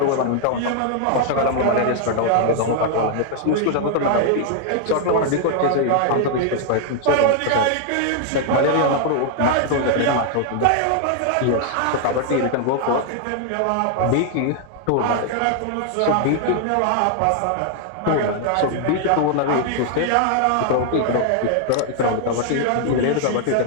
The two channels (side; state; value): both; different; correlation 0.00